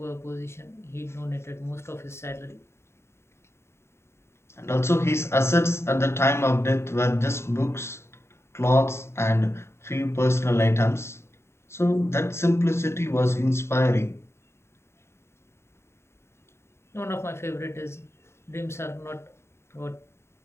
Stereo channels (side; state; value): right; late; 0.13 ms